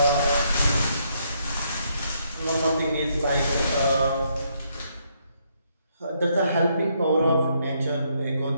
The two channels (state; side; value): inverted; both; correlation -0.74